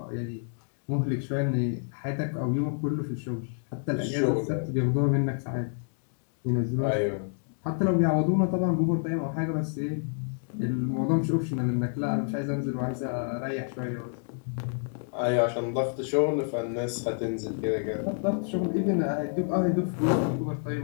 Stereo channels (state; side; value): silent; right; digital silence